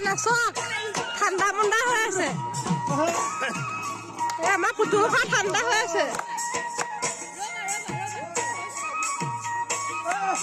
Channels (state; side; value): identical; both; correlation 1.00